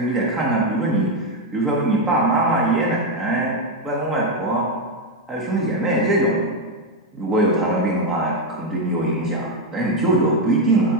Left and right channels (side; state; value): both; normal; correlation 0.06